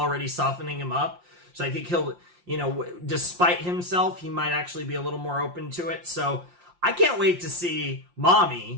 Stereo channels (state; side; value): late; left; 5.7 ms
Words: softening him up. So I think he'll, despite himself, he might actually be a little more open to it. So I can't wait to see